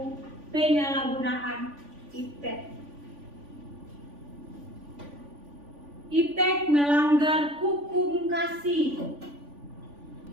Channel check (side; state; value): left; late; 3.5 ms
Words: penyalahgunaan iptek. Iptek melanggar hukum kasih.